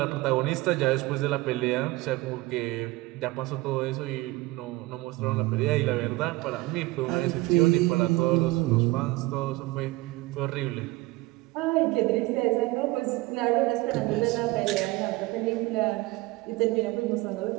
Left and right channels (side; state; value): left; quieter; 20.5 dB